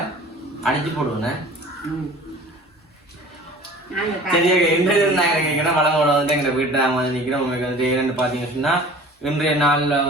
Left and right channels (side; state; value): both; normal; correlation 0.44